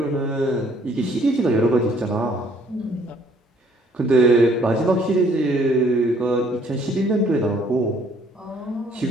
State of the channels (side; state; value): both; normal; correlation 0.63